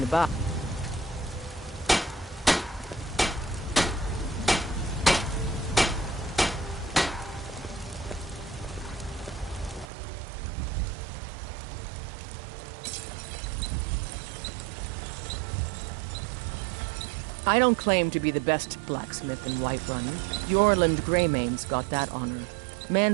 to buy. I don't claim to be the best blacksmith in Whiterun. Yorland Greymane's got that honor.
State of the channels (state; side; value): drops out; left; at 9.9 s